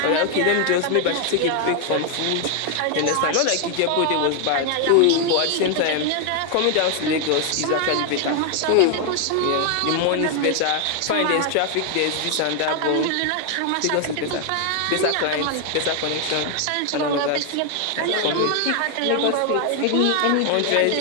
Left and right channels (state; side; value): different; both; correlation 0.00